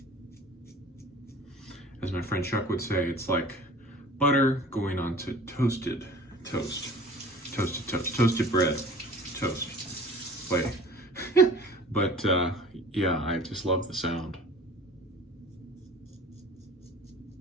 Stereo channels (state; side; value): normal; both; correlation 0.44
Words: As my friend Chuck would say, it's like butter going onto toasted toast. Toasted toast. Toasted bread. Toast. Like, but yeah, I just love the sound.